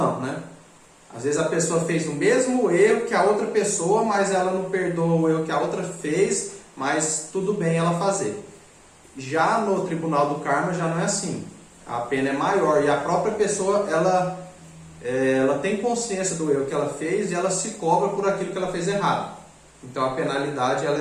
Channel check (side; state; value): both; identical; correlation 1.00